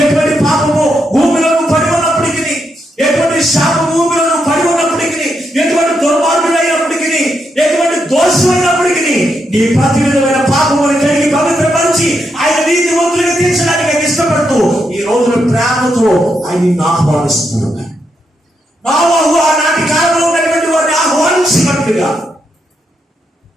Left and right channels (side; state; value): both; normal; correlation 0.81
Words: ఎటువంటి పాపము భూమిలో పడి ఉన్నప్పటికీ, ఎటువంటి శాపం భూమిలో పడి ఉన్నప్పటికీ, ఎటువంటి దుర్మార్గుడైనప్పటికీ, ఎటువంటి దోషమైనప్పటికీ నీ ప్రతి విధమైన పాపమును కలిగి పవిత్రపరిచి ఆయన నీతి వంతులుగా తీర్చడానికి ఆయన ఇష్టపడుతూ ఈ రోజున ప్రేమతో ఆయన నిన్ను ఆహ్వానిస్తున్నాడు. నోవహు ఆనాటి కాలంలో ఉన్నటువంటి వారిని ఆహ్వానించినట్టుగా,